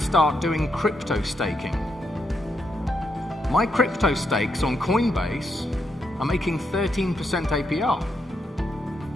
start doing crypto staking. My crypto stakes on Coinbase are making 13% APR.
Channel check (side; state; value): both; normal; correlation 0.81